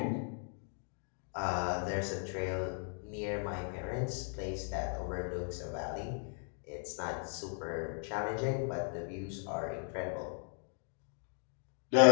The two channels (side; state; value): right; silent; 53 dB below the other